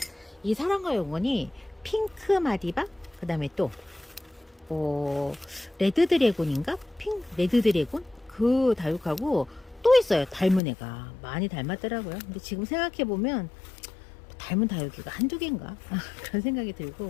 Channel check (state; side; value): drops out; right; at 10.6 s